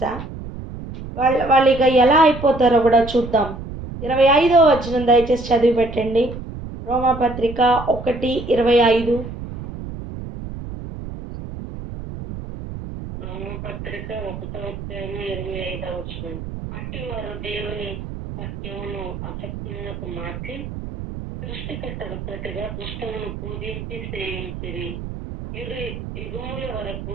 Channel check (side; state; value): right; noise; rumble, 9 dB below the sound